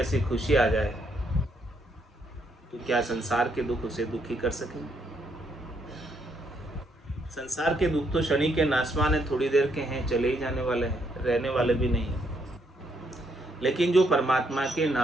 खुशी आ जाए तो क्या संसार के दुख उसे दुखी कर सकेंगे? संसार के दुख तो शनि के नाशवान है, थोड़ी देर के हैं, चले ही जाने वाले हैं, रहने वाले भी नहीं हैं। लेकिन जो परमात्मा के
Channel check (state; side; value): normal; both; correlation 0.74